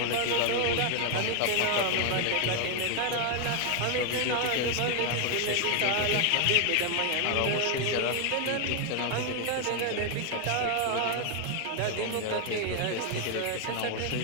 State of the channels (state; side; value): different; both; correlation 0.00